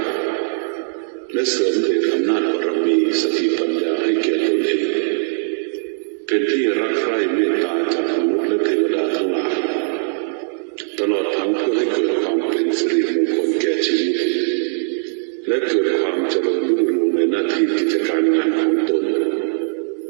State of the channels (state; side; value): silent; left; 66 dB below the other